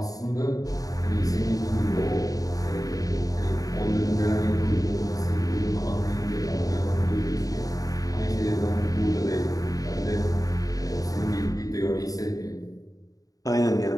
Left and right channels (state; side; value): late; right; 0.17 ms